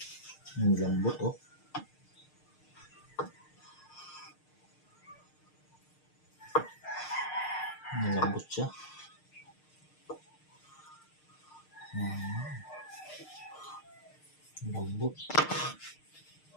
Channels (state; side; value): late; right; 6.6 ms